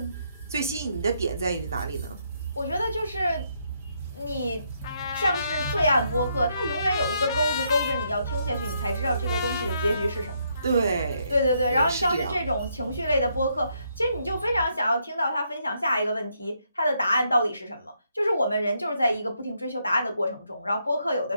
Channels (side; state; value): both; inverted; correlation -0.75